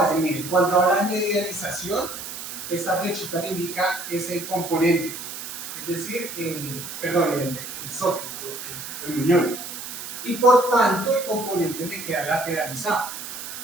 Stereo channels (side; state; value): right; noise; hiss, 9 dB below the sound